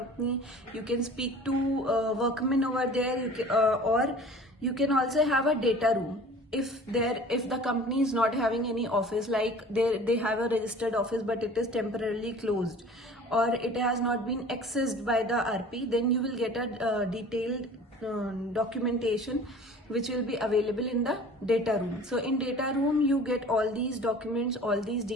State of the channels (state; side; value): normal; both; correlation 0.44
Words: You can speak to workmen over there, or you can also have a data room. If the company is not having any office, like they have a registered office but it is temporarily closed, or it has not been accessed by the RP, then you will get a detailed documentation which will be available in the data room. So in data room you get all these documents, all these